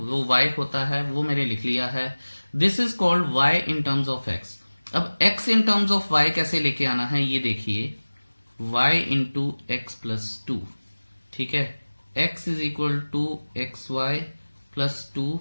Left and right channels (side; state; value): both; inverted; correlation -1.00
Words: y होता है, वो मैंने लिख लिया है। This is called y in terms of x। अब x in terms of y कैसे लेके आना है, ये देखिए, y इंटू एक्स प्लस 2, ठीक है, x is equal to x y plus